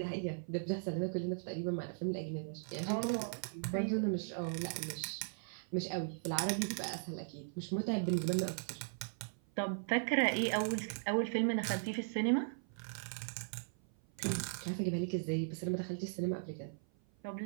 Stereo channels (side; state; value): left; silent; 52 dB below the other